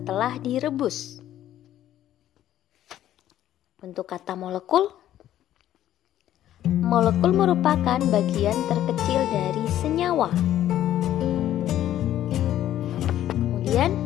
direbus. Untuk kata molekul, molekul merupakan bagian terkecil dari senyawa. Kemudian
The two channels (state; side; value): quieter; right; 12.3 dB